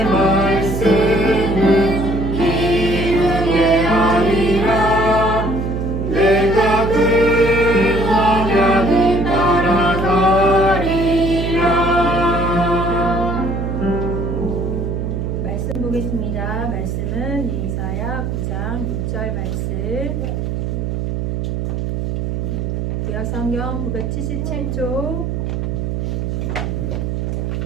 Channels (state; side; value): noise; right; hum, 2 dB below the sound